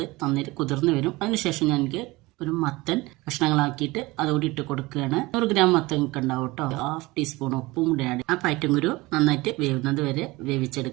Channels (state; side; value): quieter; left; 21.5 dB